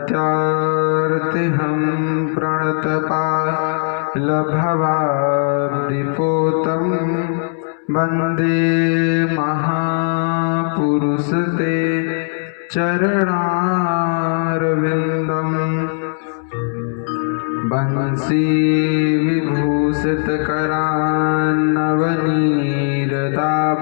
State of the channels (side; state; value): right; silent; 66 dB below the other